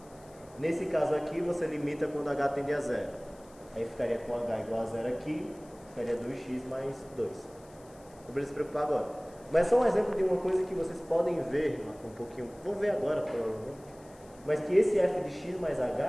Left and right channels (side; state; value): left; noise; hiss, 26 dB below the sound